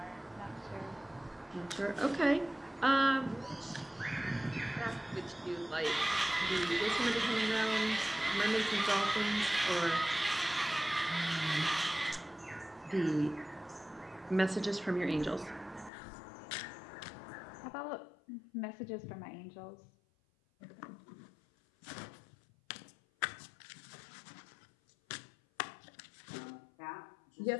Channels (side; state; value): right; drops out; at 15.9 s